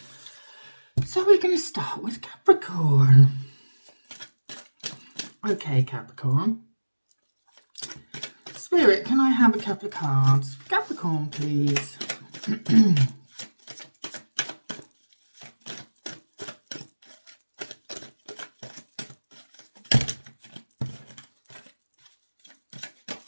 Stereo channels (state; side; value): inverted; both; correlation -1.00